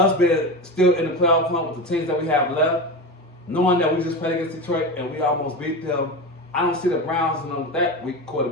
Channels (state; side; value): normal; both; correlation 0.23